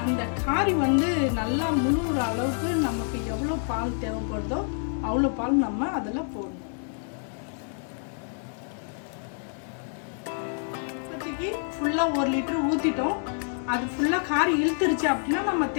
அந்த காரி வந்து நல்லா முழுகிற அளவுக்கு நமக்கு எவ்வளோ பால் தேவைப்படுதோ அவ்வளோ பால் நம்ம அதில் போடணும். இப்போதைக்கு ஃபுல்லாக 1 லிட்டர் ஊற்றிட்டோம். அது ஃபுல்லாக காரி இழுத்துருச்சு அப்படின்னா நம்ம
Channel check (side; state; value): right; silent; 58 dB below the other